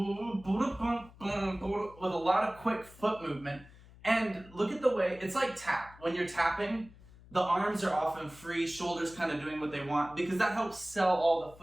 a lot of quick foot movement. And look at the way, it's like tap. When you're tapping, the arms are often free, shoulders kind of doing what they want, because that helps sell all the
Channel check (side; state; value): left; noise; hum, 22 dB below the sound